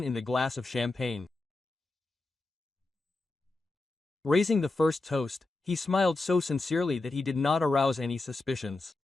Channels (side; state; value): right; quieter; 3.2 dB